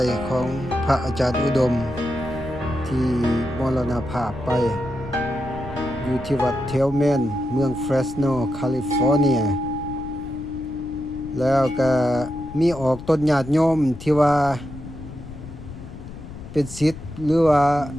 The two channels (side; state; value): left; noise; rumble, 13 dB below the sound